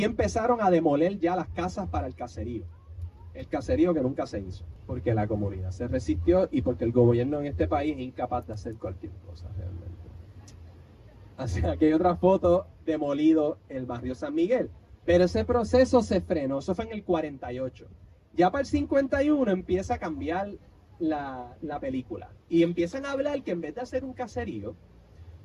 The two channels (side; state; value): both; identical; correlation 1.00